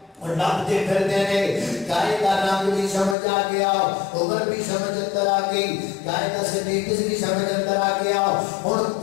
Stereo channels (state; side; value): drops out; right; at 3.2 s